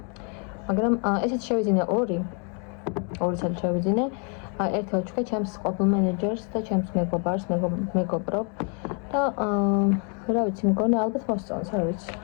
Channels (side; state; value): right; quieter; 38.8 dB